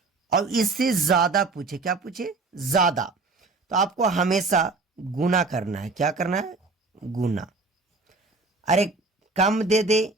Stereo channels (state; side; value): quieter; left; 3.7 dB